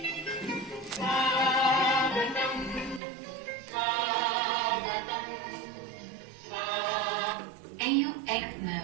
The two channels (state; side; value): drops out; left; at 3.0 s